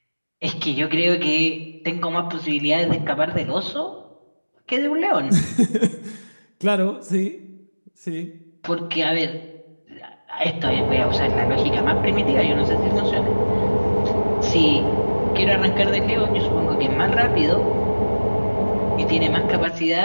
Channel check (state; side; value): inverted; both; correlation -1.00